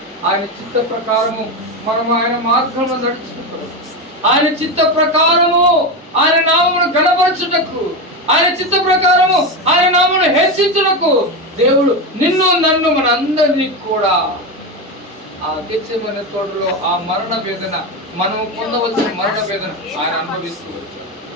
ఆయన చిత్త ప్రకారము మనం ఆయన మార్గంలో నడుచుకుంటూ, ఆయన చిత్త ప్రకారము ఆయన నామమును గణపరచుటకు, ఆయన చిత్త ప్రకారము ఆయన నామమును హెచ్చించుటకు దేవుడు నిన్ను నన్ను మన అందరినీ కూడా ఆ గెత్సేమనే తోటలో ఆ మరణ వేదన, మనము పొందవలసిన మరణ వేదన ఆయన అనుభవిస్తూ వచ్చాడు.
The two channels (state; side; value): normal; both; correlation 0.15